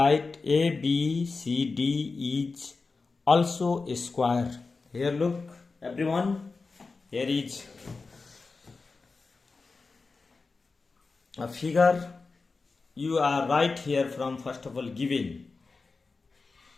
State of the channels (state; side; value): quieter; right; 4.1 dB